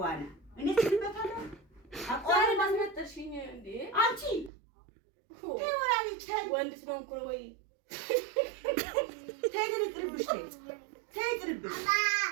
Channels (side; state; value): left; drops out; at 4.5 s